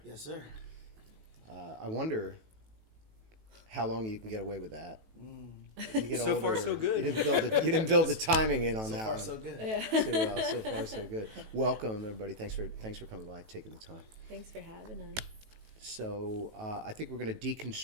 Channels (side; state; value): left; late; 18 ms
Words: Yes, sir. I wonder how long you can get away with that. You get So older, far, so good. You didn't build the timing in on So that far, one. so good. Yeah. So far, so good. Welcome, everybody. Thanks for coming by, taking the time. Thanks for having us. So I think we're going to